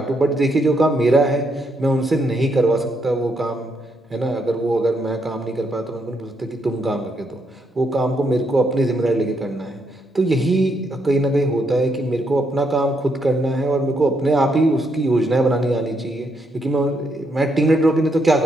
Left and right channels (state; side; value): normal; both; correlation 0.77